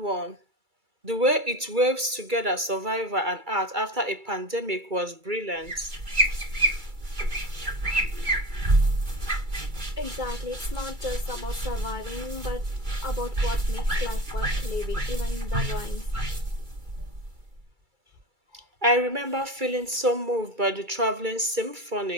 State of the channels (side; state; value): left; late; 2.3 ms